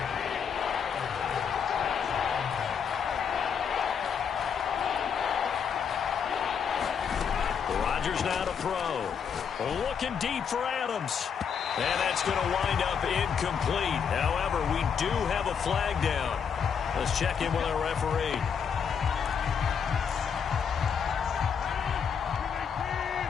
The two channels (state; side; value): quieter; right; 7.0 dB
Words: Rodgers now to throw. Looking deep for Adams. And that's going to wind up incomplete. However, we do have a flag down. Let's check in with our referee.